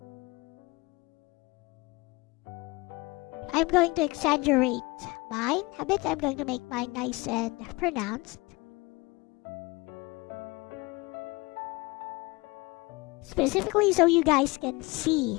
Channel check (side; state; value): right; quieter; 24.3 dB